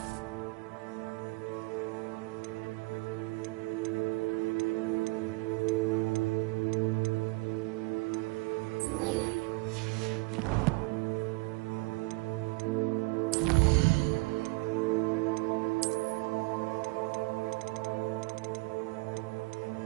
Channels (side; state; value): left; quieter; 26.0 dB